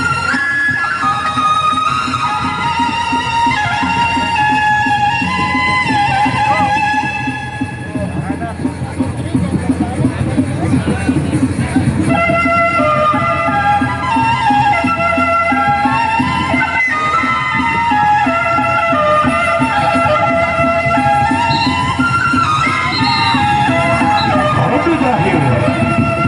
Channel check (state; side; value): identical; both; correlation 1.00